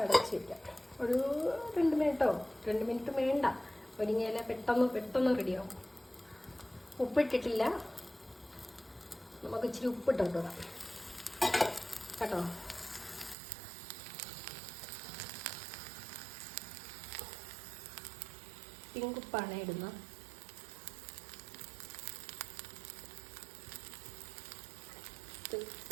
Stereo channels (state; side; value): drops out; left; at 13.4 s